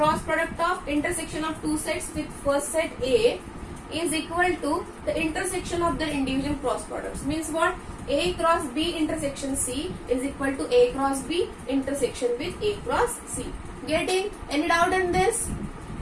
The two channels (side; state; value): both; identical; correlation 1.00